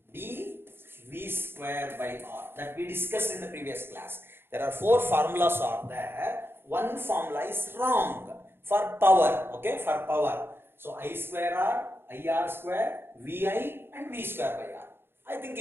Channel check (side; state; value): left; late; 0.11 ms